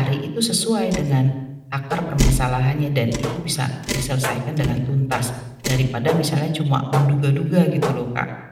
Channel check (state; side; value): identical; both; correlation 1.00